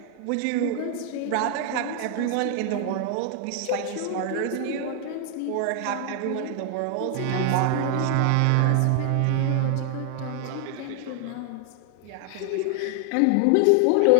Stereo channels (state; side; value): different; both; correlation 0.00